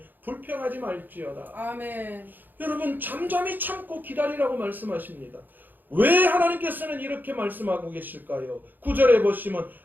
불평하지 말지어다. 아멘. 여러분 잠잠히 참고 기다리라고 말씀하십니다. 왜 하나님께서는 이렇게 말씀하고 계실까요? 9절에 보시면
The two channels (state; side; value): late; left; 0.088 ms